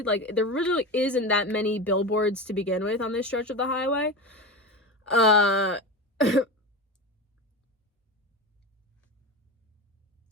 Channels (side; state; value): both; normal; correlation 0.24